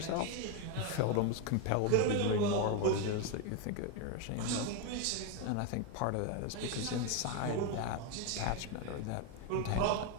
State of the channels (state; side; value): different; both; correlation 0.02